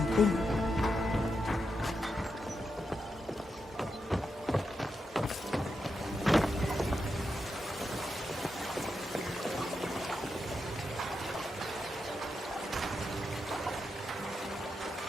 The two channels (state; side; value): normal; both; correlation 0.86